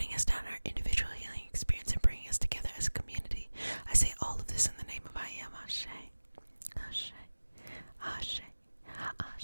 us down in our individual healing experience and bringing us together as a community. I say all of this in the name of I Am. Ashe, Ashe, Ashe,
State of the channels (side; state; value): both; inverted; correlation -1.00